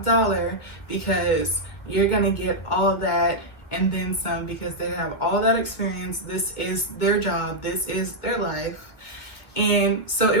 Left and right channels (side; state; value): right; late; 2.0 ms